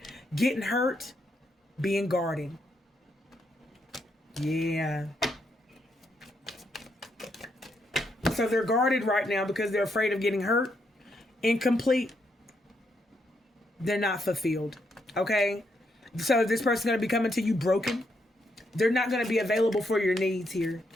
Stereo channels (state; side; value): normal; both; correlation 0.78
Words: Getting hurt, being guarded. Yeah. So they're guarded right now because they're afraid of getting hurt, incomplete. They're not fulfilled. Okay? So this person's going to be coming to you broken. They're not going to be available for your needs here.